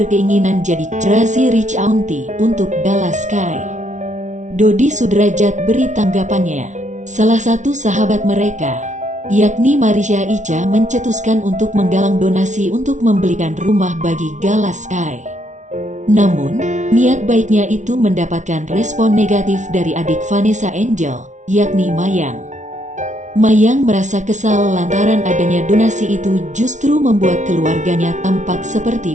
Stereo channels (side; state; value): left; late; 0.35 ms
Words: jadi Crazy Rich Auntie untuk Gala Sky. Dodi Sudrajat beri tanggapannya. Salah satu sahabat mereka, yakni Marisha Ica, mencetuskan untuk menggalang donasi untuk membelikan rumah bagi Gala Sky. Namun, niat baiknya itu mendapatkan respon negatif dari adik Vanessa Angel, yakni Mayang. Mayang merasa kesal lantaran adanya donasi itu justru membuat keluarganya tampak seperti